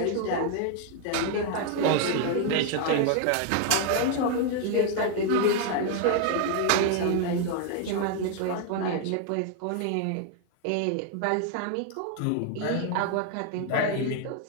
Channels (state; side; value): different; both; correlation 0.00